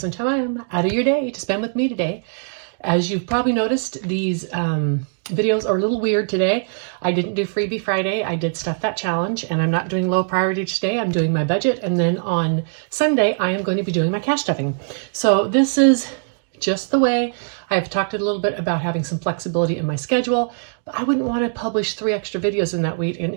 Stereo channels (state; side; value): silent; left; digital silence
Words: time out of your day to spend with me today. As you've probably noticed, these videos are a little weird today. I didn't do Freebie Friday, I did Stuff That Challenge, and I'm not doing low priority today, I'm doing my budget, and then on Sunday I am going to be doing my cash stuffing. So this is just the way. I've talked a little bit about having some flexibility in my schedule, but I wouldn't want to publish 3 extra videos in that week and